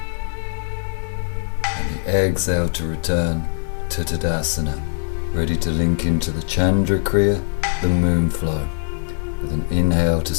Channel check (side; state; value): right; silent; digital silence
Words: And the exhale to return to Tadasana. Ready to link into the Chandra Kriya, the moon flow, with an inhale to